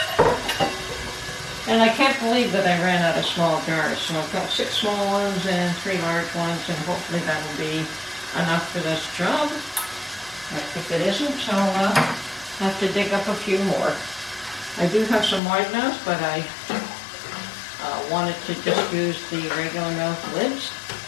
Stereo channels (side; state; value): right; drops out; at 15.4 s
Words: and I can't believe that I ran out of small jars. So I've got 6 small ones and 3 large ones, and hopefully that'll be enough for this job. If it isn't, I'll have to dig up a few more. I do have some wide mouths, but I wanted to just use the regular mouth lids.